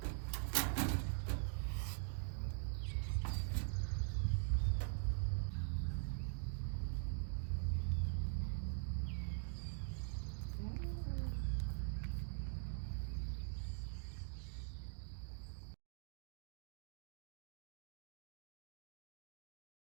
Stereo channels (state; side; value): silent; left; digital silence